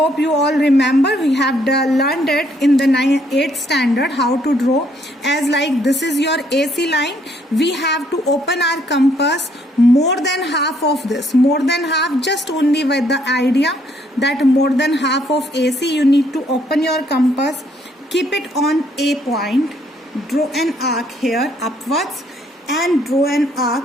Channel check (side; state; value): both; normal; correlation 0.68